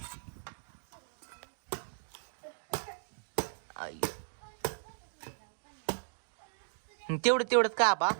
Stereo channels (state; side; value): silent; left; digital silence